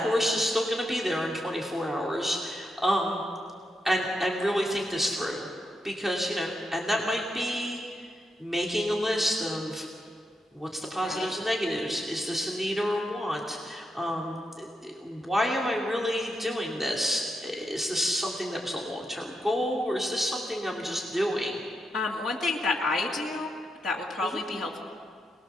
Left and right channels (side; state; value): both; normal; correlation 0.84